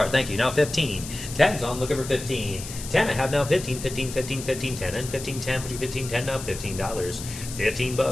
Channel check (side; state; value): left; noise; hiss, 11 dB below the sound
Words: Thank you. Now 15. 10's on. Looking for 15. 10. I have now 15, 15, 15, 15, 10, and 15, 10, 15, 10, now $15. $15.